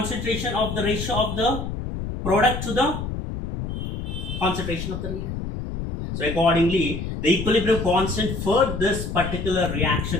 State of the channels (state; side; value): noise; left; rumble, 5 dB below the sound